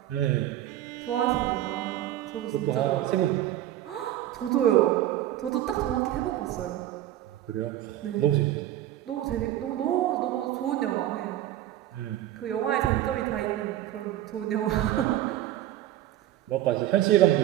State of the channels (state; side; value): quieter; left; 13.3 dB